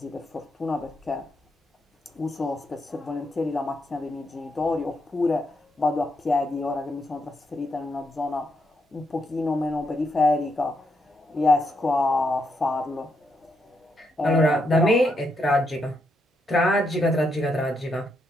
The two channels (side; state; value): both; normal; correlation 0.80